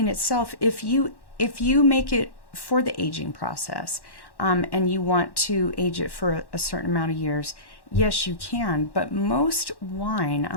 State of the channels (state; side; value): late; right; 1.1 ms